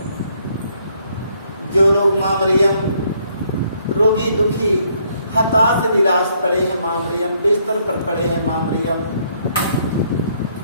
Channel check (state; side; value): inverted; both; correlation -0.69